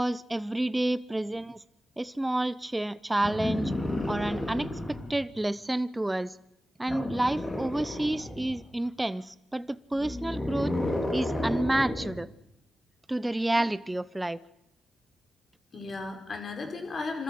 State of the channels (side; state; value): both; normal; correlation 0.96